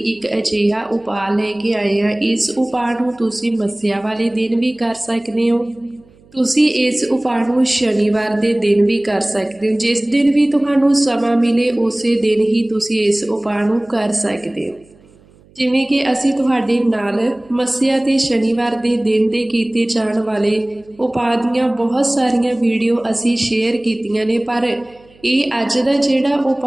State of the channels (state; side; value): noise; right; hum, 29 dB below the sound